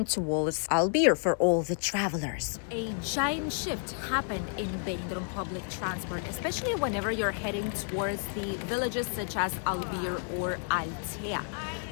towards Albir for all the travelers. A giant shift happened in Benidorm public transport, especially whenever you're heading towards the villages such as Albir or Altea.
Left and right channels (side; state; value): right; silent; 57 dB below the other